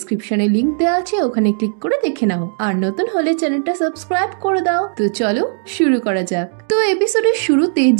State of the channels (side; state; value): left; silent; digital silence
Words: লিংক দেওয়া আছে, ওখানে ক্লিক করে দেখে নাও। আর নতুন হলে চ্যানেলটা সাবস্ক্রাইব করে দাও। তো চলো শুরু করা যাক। তো এপিসোডের শুরুতে